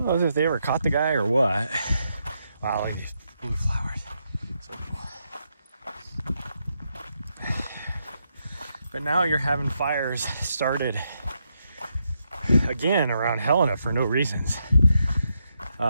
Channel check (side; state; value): both; inverted; correlation -0.81